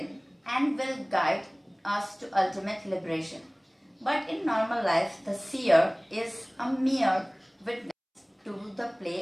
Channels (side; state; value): both; identical; correlation 1.00